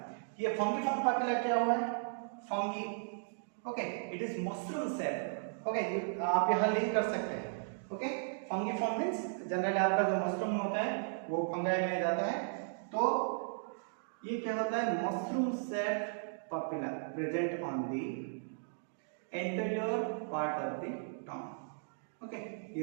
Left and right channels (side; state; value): left; silent; digital silence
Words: ये फंगीफॉर्म पापिला क्या हुआ है? Fungi. Okay, it is mushroom shape. Okay, आप यहां लिंक कर सकते हैं। ओके, फंगीफॉर्म मींस जनरली आपका जो मशरूम होता है वो फंगाई में जाता है, तो ये क्या होता है? Mushroom shape papilla present on the anterior part of the tongue. Okay,